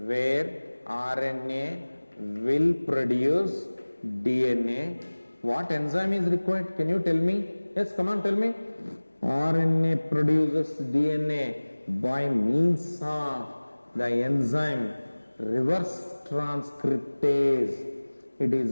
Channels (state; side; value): inverted; both; correlation -1.00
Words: where RNA will produce DNA. What enzyme is required? Can you tell me? Yes, come on, tell me. RNA produces DNA by means of the enzyme reverse transcriptase. It